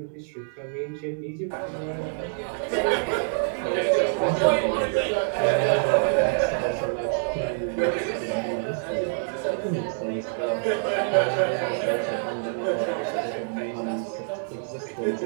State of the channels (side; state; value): left; silent; digital silence